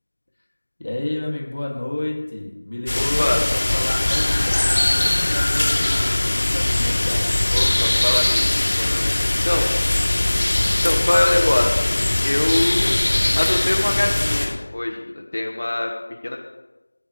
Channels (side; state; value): both; inverted; correlation -1.00